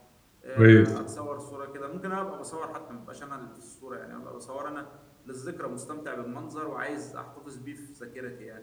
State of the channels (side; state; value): both; identical; correlation 1.00